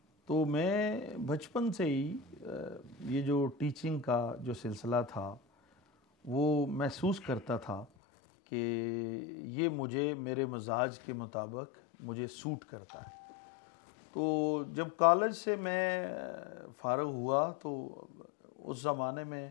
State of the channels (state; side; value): drops out; right; at 7.9 s